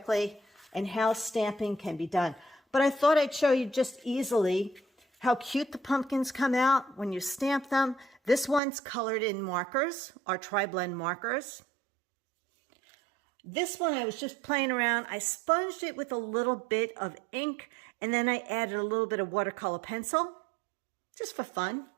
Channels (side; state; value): left; drops out; at 8.6 s